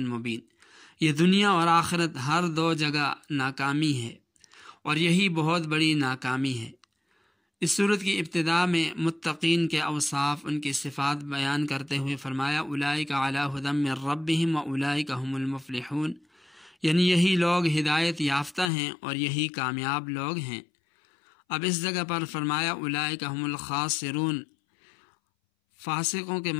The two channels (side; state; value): right; drops out; at 18.7 s